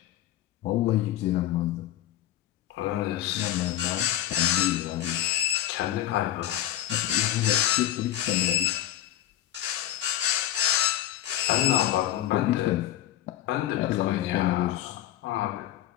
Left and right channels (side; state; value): right; quieter; 12.8 dB